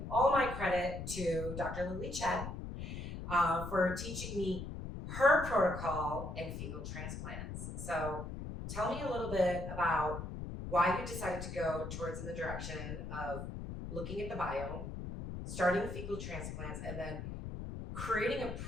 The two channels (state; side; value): noise; left; rumble, 7 dB below the sound